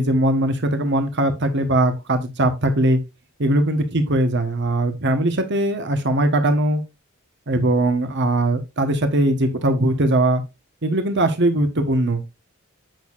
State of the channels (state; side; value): normal; both; correlation 0.50